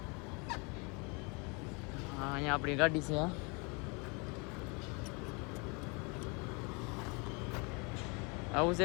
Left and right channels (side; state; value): right; quieter; 31.2 dB